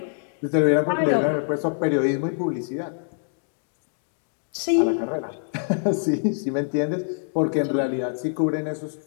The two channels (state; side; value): silent; right; digital silence